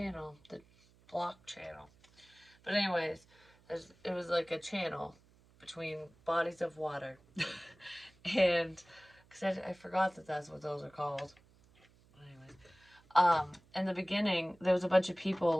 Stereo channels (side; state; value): right; noise; hum, 29 dB below the sound